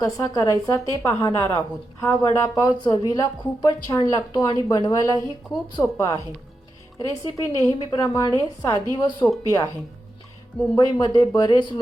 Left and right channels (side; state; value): both; normal; correlation 0.88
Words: करायचा ते पाहणार आहोत। हा वडापाव चवीला खूपच छान लागतो आणि बनवायलाही खूप सोपा आहे। रेसिपी नेहमीप्रमाणे साधी व सोपी आहे। मुंबईमध्ये बरेच